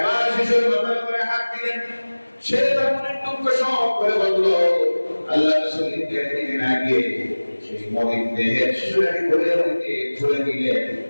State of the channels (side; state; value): both; inverted; correlation -1.00